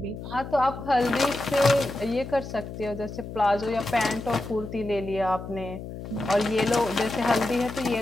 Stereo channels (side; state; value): left; noise; hum, 10 dB below the sound